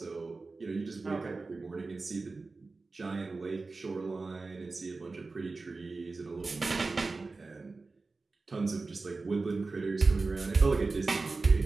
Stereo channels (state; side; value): quieter; left; 3.8 dB